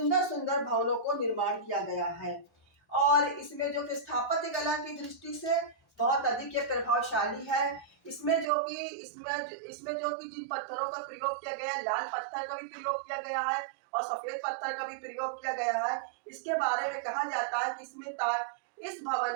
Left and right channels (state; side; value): drops out; left; at 8.5 s